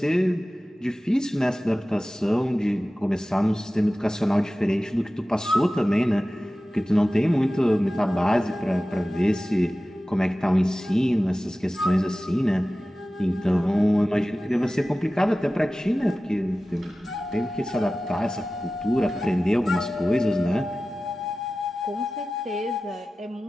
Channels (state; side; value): normal; both; correlation 0.96